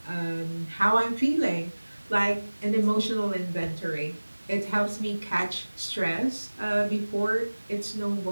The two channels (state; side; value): inverted; both; correlation -1.00